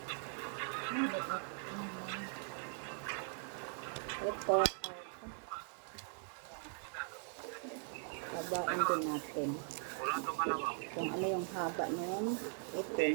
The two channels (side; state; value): left; silent; 51 dB below the other